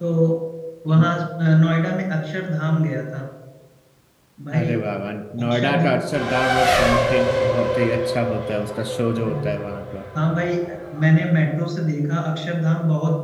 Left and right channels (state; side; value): identical; both; correlation 1.00